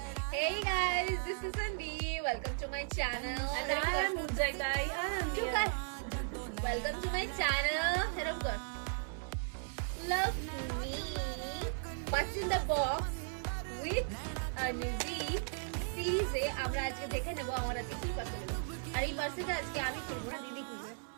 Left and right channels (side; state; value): left; silent; 53 dB below the other